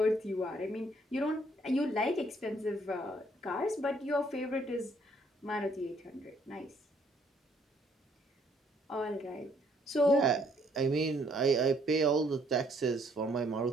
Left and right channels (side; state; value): both; normal; correlation 0.66